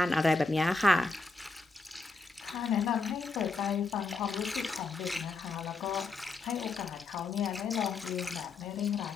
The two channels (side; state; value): right; quieter; 3.7 dB